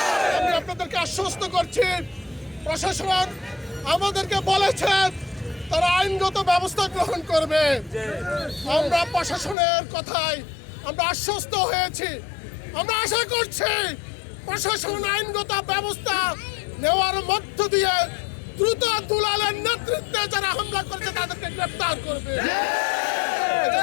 আমি আপনাদেরকে আশ্বস্ত করছি, প্রশাসন আমাদেরকে বলেছেন তারা আইনগত ব্যবস্থা গ্রহণ করবে। আমরা প্রশাসনের কথায় আমরা আশ্বস্ত হয়েছি। আমরা আশা করছি প্রশাসন আইনগত ব্যবস্থা নেওয়ার মধ্য দিয়ে দ্রুত দুলালের নেতৃত্বে যারা হামলা করেছে তাদেরকে গ্রেফতার করবে।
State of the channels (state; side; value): drops out; right; at 9.6 s